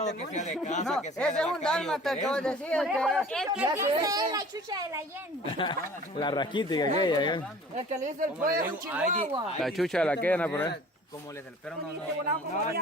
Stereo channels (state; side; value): normal; both; correlation 0.46